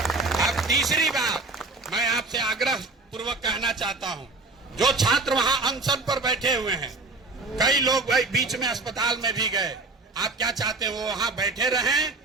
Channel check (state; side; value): quieter; left; 3.4 dB